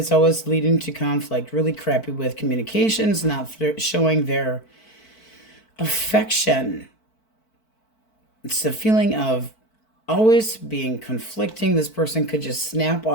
always leading to conflict. Really crappy with communications. Not showing their affection. It's the feeling of always being conflicting. This person could just snap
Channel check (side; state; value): right; late; 4.5 ms